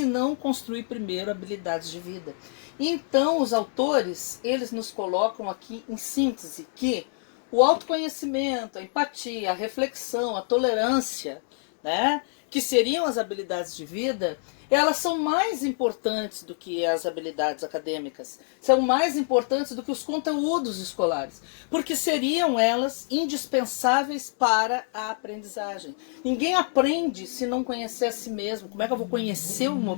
não construir primeiro habilidades de vida. Então, os autores, eles nos colocam aqui em síntese que o autoconhecimento, a empatia, a reflexão, a tolerância, né, que seriam as habilidades de vida, elas são mais importantes do que as habilidades acadêmicas, são mais importantes do que os conteúdos escolares, porque seriam elas indispensáveis para a aprendizagem. Ninguém aprende se não conhecer a si mesmo. Como é que eu vou conhecer um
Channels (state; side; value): silent; right; 58 dB below the other